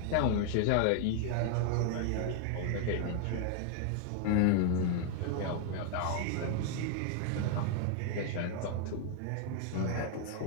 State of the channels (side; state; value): both; different; correlation 0.00